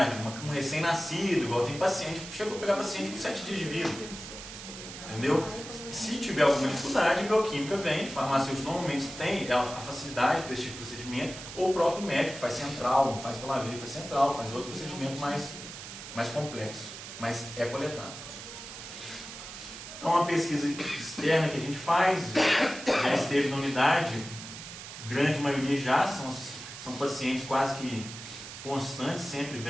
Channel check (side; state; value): right; noise; hiss, 11 dB below the sound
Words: um recém-nascido, igual tem paciente, chegou a pegar paciente com 7 dias de vida. Entendeu? Se tiver alguma dificuldade, a bioquímica vem, farmacêutico normalmente tem a facilidade para esse tipo de procedimento, ou o próprio médico faz central, não faz pela veia, faz central, faz outro procedimento mais complexo, mas é coletado. Então, uma pesquisa externa que a gente faz, já esteve na unidade, grande maioria já, são pacientes quase que constantes, sempre